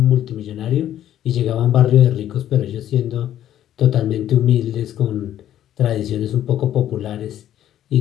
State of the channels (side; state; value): right; quieter; 11.6 dB